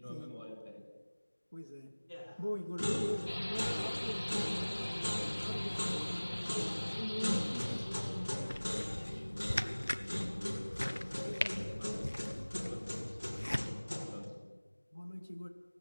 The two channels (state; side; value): inverted; both; correlation -1.00